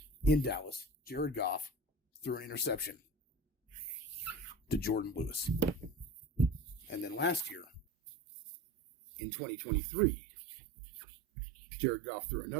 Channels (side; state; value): left; drops out; at 7.9 s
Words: in Dallas, Jared Goff threw an interception to Jordan Lewis. And then last year, in 2023, Jared Goff threw